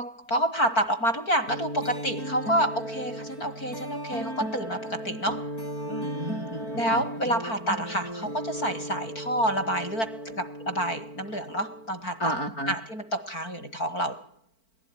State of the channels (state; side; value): late; right; 4.5 ms